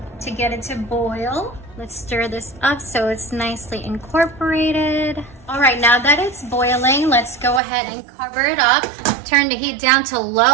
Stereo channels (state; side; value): drops out; left; at 7.6 s